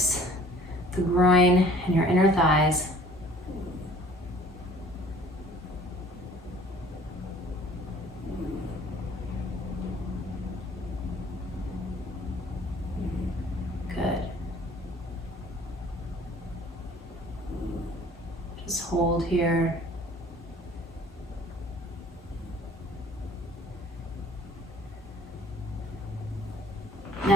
the groin, and your inner thighs. Hold here.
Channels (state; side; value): normal; both; correlation 0.53